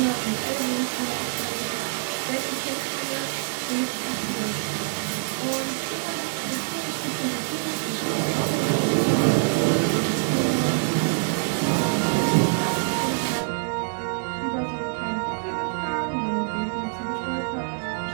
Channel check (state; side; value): silent; left; digital silence